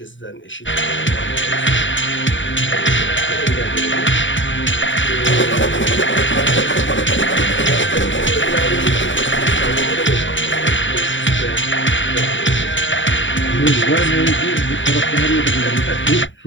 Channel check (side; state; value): right; late; 0.55 ms